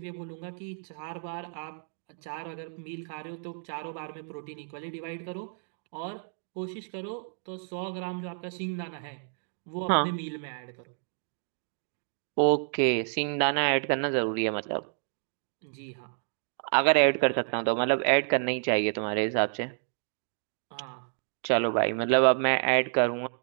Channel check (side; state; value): left; silent; digital silence